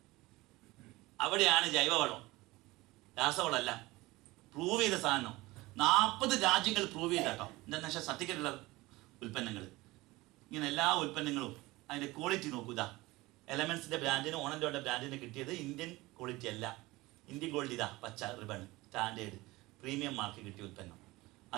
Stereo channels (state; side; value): quieter; left; 20.4 dB